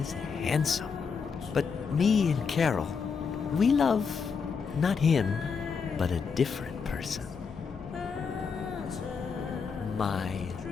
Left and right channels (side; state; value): right; quieter; 5.7 dB